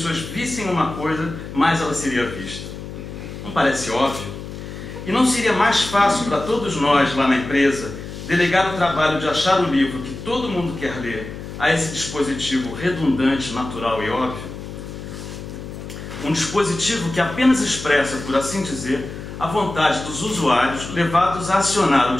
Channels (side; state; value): left; noise; hum, 10 dB below the sound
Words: vissem uma coisa, mais ela seria vista? Não parece óbvio? E não seria mais fácil para todos nós lá na empresa delegar o trabalho de achar o livro que todo mundo quer ler a esse dispositivo redundante, natural e óbvio? Um dispositivo que apenas expressa, por assim dizer, a vontade dos usuários levados a acionar o